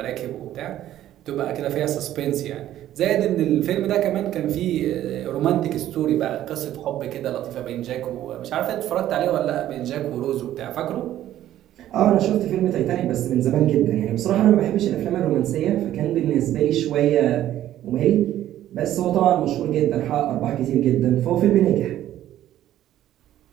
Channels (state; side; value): quieter; left; 12.7 dB